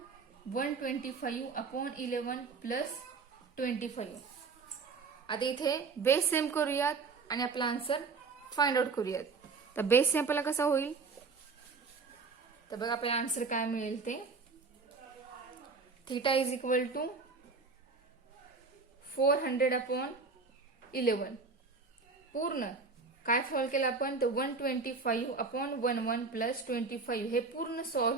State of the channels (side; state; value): left; quieter; 4.5 dB